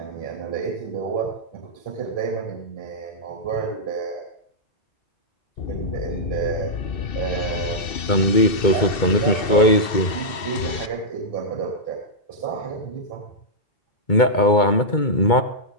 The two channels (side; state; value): right; late; 2.7 ms